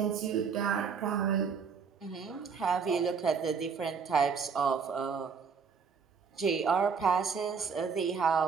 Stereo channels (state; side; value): quieter; left; 5.9 dB